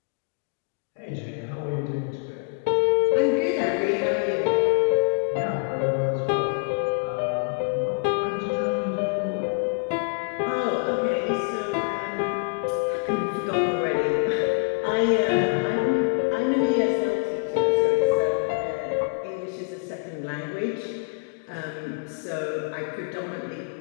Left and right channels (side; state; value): right; silent; digital silence